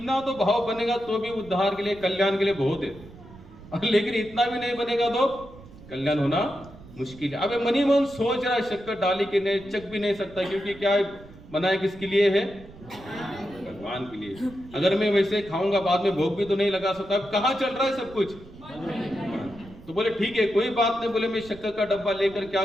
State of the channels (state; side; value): noise; right; rumble, 19 dB below the sound